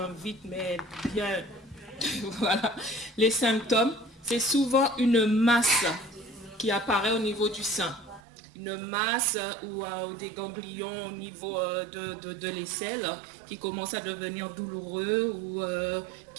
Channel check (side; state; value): left; drops out; at 8.2 s